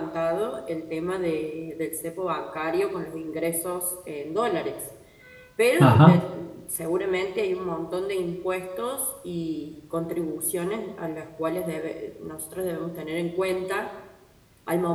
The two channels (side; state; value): both; identical; correlation 1.00